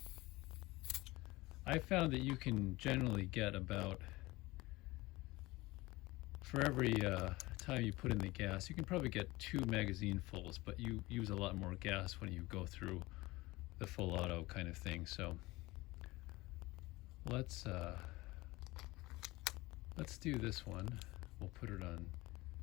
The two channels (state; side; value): quieter; right; 20.7 dB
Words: I found that you can generally get about for every time you put in the gas, you can probably get 2 magazine fulls, but you use a lot more gas when you go through the full auto kind of thing. So let's do this one. We'll put it on